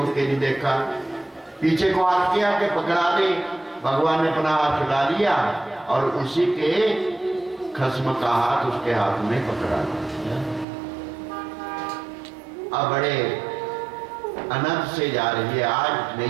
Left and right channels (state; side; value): drops out; left; at 10.7 s